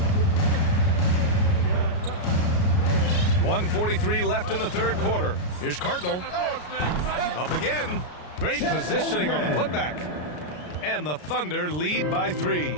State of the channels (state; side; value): late; right; 33 ms